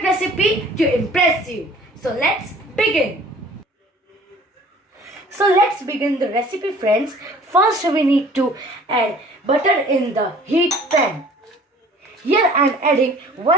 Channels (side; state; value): both; normal; correlation 0.51